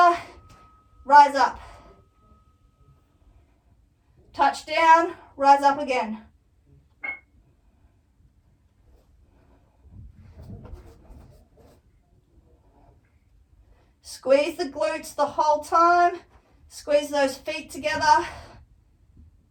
rise up. Touch down, rise up again. Squeeze the glutes the whole time. Squeeze those feet together.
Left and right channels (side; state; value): both; identical; correlation 1.00